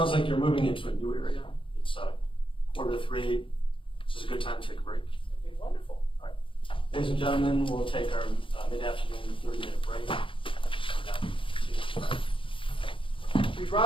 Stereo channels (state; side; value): late; right; 0.25 ms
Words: like you're moving into a new area. It's 2:45. This is a good time to take a break. okay, wonderful. Ladies and gentlemen, we'll take our mid-afternoon 30-minute break. Please